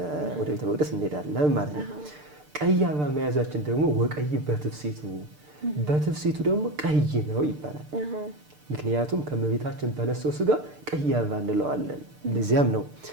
ወደ ቤተ መቅደስ እንሄዳለን ማለት ነው። ቀይ አበባ መያዛችን ደግሞ ወቀይ በትፍሲቱ ደግሞ ቀይ ነው ይባላል። ምክንያቱም ከመቤታችን በነሳው ስጋ ቀይ አበባ እንለዋለን። ለዚያም ነው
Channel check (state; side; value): late; left; 6.7 ms